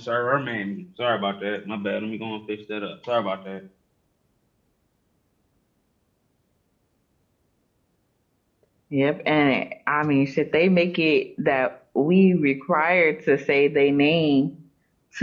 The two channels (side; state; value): both; identical; correlation 1.00